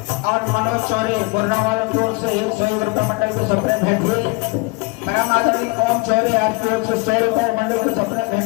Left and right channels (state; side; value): quieter; right; 26.5 dB